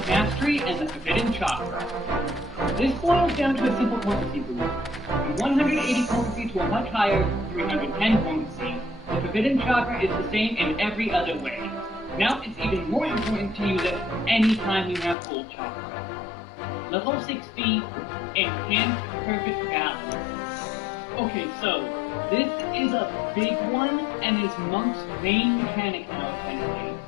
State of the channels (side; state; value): right; drops out; at 15.2 s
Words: Mastery and the Forbidden Chakra. This boils down to a simple potency boost. From 180 potency to a much higher 310 potency. The Forbidden Chakra is the same in every other way. Now it's even more important to use it anytime you have full chakra. Level 60, Enhanced Perfect Balance. Okay, so this is a big one and is Monk's main mechanic now, essentially.